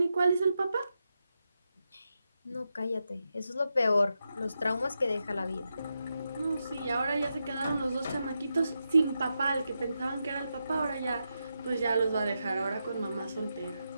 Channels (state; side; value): inverted; both; correlation -0.87